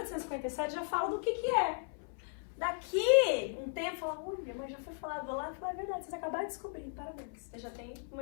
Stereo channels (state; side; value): silent; right; 54 dB below the other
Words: já fala do que é. Daqui um tempo, fala, olha, mas já foi falado lá, e fala, é verdade, vocês acabaram de descobrir, parabéns. Você já tem